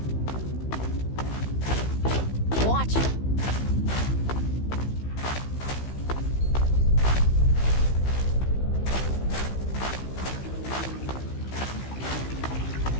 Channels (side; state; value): right; late; 15 ms